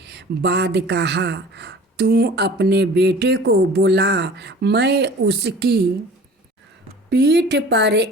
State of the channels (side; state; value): both; normal; correlation 0.44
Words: बाद कहा, तू अपने बेटे को बुला, मैं उसकी पीठ पर